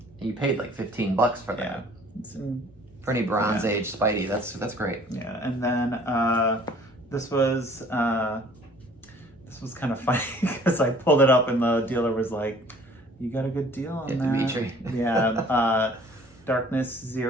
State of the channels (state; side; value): normal; both; correlation 0.53